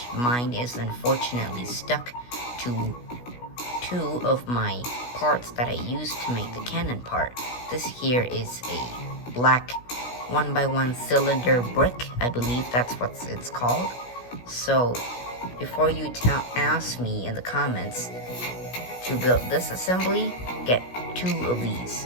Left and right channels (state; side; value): late; right; 16 ms